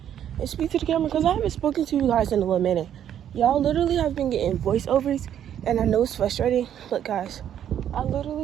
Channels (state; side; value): quieter; left; 10.0 dB